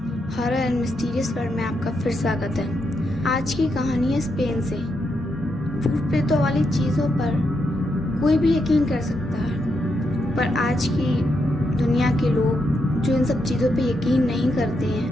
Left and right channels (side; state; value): both; normal; correlation 0.81